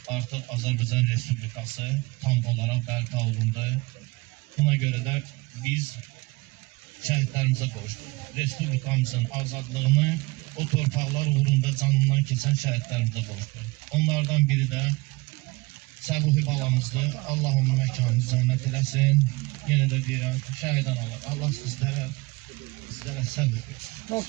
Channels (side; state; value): left; quieter; 23.7 dB